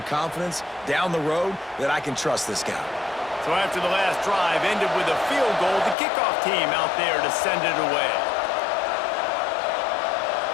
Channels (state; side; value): drops out; right; at 6.0 s